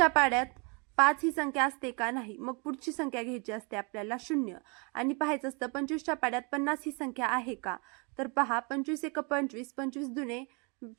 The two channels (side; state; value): left; quieter; 33.2 dB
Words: पाड्यात 5 ही संख्या असते का नाही, मग पुढची संख्या घ्यायची असते आपल्याला 0 आणि पाहायचं असतं 25च्या पाड्यात 50 ही संख्या आहे का, तर पहा 25 एक 25, 25 दुने